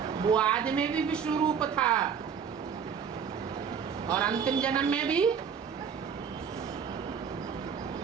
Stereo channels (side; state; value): left; quieter; 7.1 dB